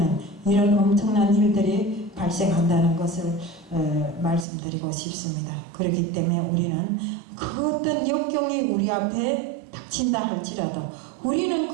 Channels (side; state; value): left; drops out; at 4.5 s